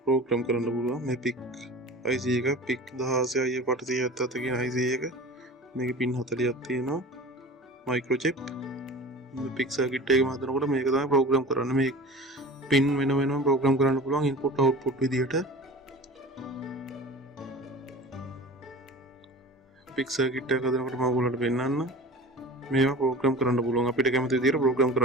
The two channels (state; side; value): normal; both; correlation 0.38